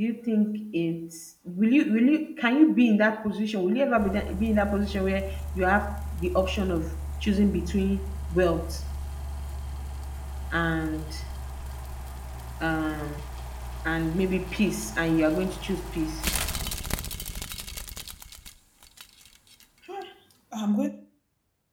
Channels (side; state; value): both; identical; correlation 1.00